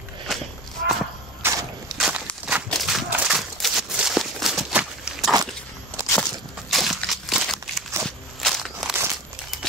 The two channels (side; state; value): both; normal; correlation 0.32